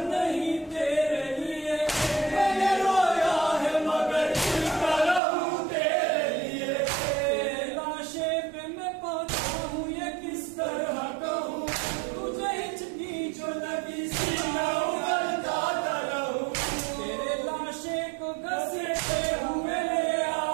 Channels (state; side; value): drops out; left; at 5.2 s